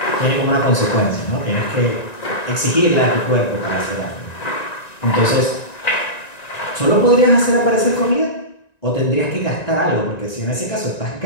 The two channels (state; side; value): late; right; 1.9 ms